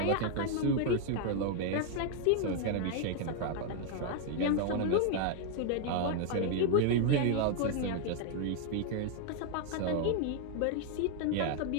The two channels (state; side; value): different; both; correlation 0.00